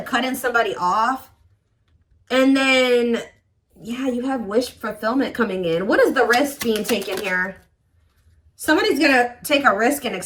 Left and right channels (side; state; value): both; identical; correlation 1.00